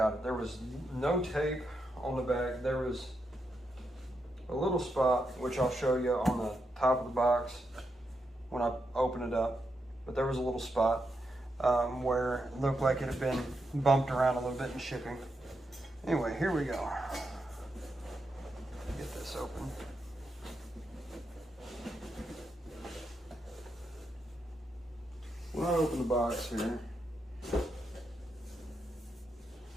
it. There was no tape on the back. There was a little spot, which I'll show you on the top of the box when I open it up. But there was a little spot where it looked like it had been bumped around a little bit in shipping. Anyway, here we go. Get this open. When I open the box here,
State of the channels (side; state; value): both; normal; correlation 0.84